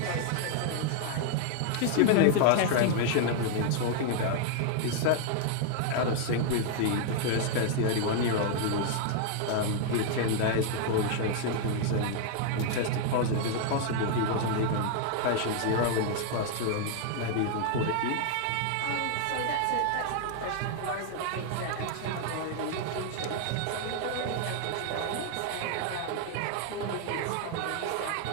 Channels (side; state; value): both; different; correlation 0.00